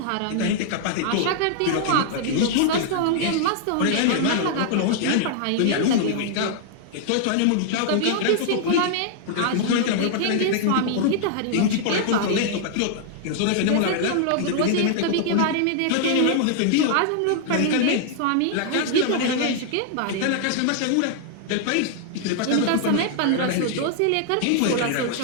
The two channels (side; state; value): both; different; correlation 0.00